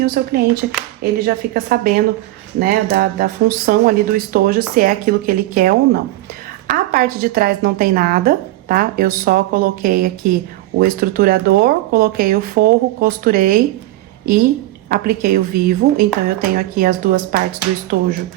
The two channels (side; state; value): left; quieter; 16.7 dB